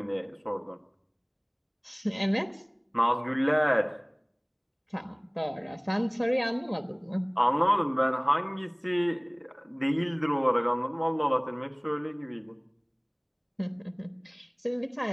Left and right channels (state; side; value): identical; both; correlation 1.00